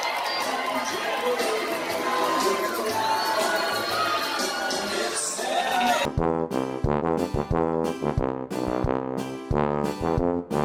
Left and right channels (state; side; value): identical; both; correlation 1.00